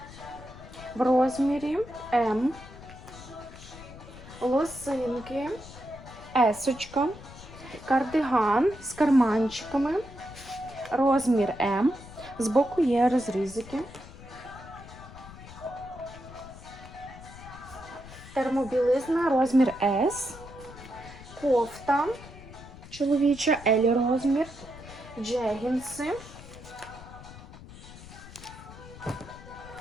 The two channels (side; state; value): left; noise; rumble, 16 dB below the sound